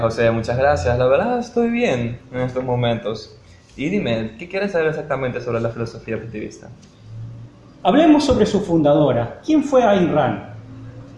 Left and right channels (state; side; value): identical; both; correlation 1.00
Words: muchas gracias. La verdad estoy bien en estos momentos. Y dime, ¿qué quieres saber exactamente sobre la filosofía objetivista? Hablemos sobre su fundadora. ¿Quién fue Ayn Rand?